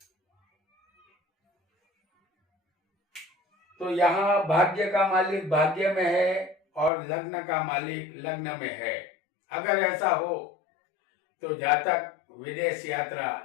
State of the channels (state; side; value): drops out; right; at 6.9 s